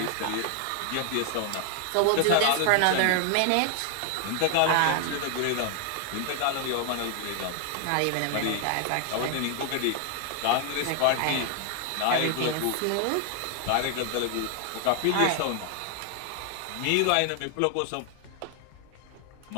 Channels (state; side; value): different; both; correlation 0.00